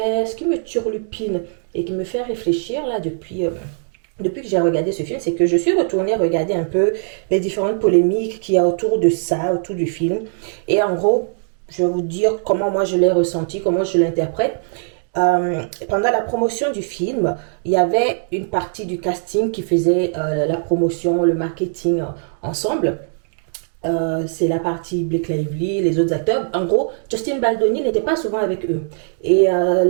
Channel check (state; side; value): silent; left; digital silence